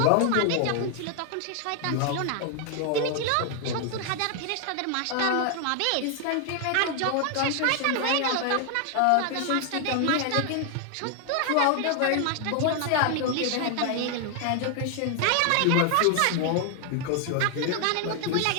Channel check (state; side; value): different; both; correlation 0.00